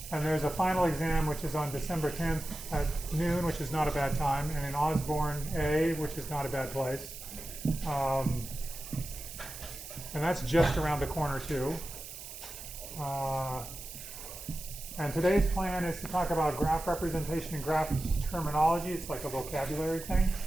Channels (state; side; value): noise; right; hiss, 12 dB below the sound